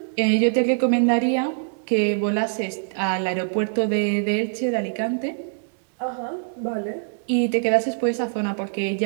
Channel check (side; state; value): left; silent; digital silence